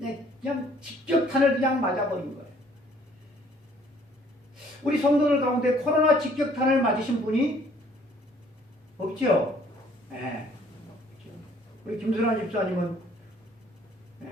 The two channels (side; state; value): both; normal; correlation 0.59